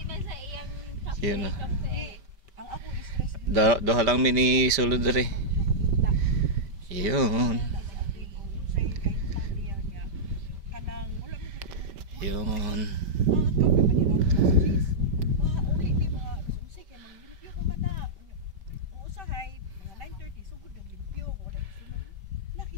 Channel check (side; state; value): left; late; 5.1 ms